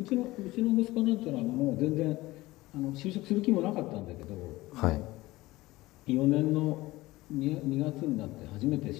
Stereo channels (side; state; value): right; quieter; 19.0 dB